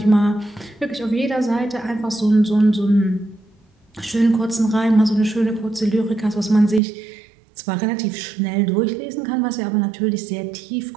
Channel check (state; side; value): drops out; left; at 6.8 s